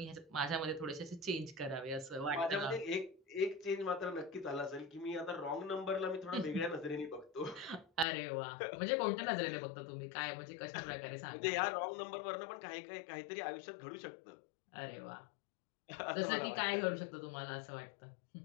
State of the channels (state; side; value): drops out; right; at 8.1 s